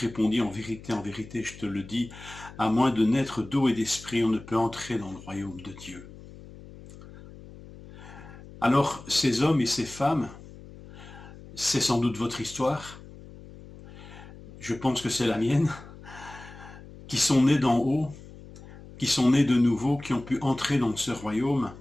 en vérité, je te le dis, à moins de naître d'eau et d'esprit, on ne peut entrer dans le royaume de Dieu. Alors, ces hommes et ces femmes, c'est sans doute votre histoire, je pense que c'est la mienne, qui sont nés d'en haut, qui sont nés de nouveau, qui ont pu entrer dans ce royaume,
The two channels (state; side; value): noise; left; hum, 17 dB below the sound